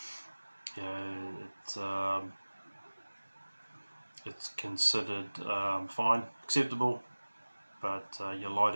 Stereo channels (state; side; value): inverted; both; correlation -1.00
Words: you know, it's considered fine, acceptable, but your